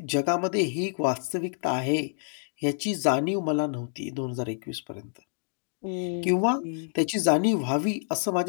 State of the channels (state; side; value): silent; right; digital silence